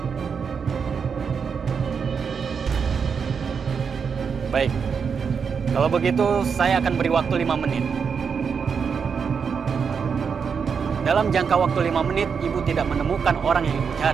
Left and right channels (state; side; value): quieter; left; 6.2 dB